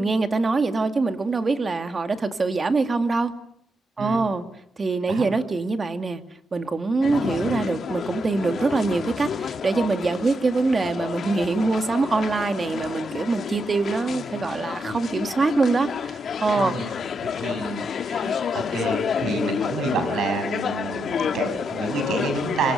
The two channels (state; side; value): normal; both; correlation 0.83